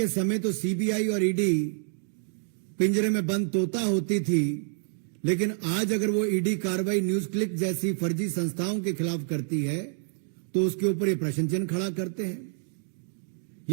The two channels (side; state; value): left; silent; 59 dB below the other